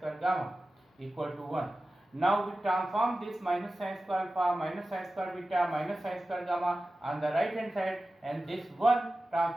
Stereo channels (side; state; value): both; normal; correlation 0.95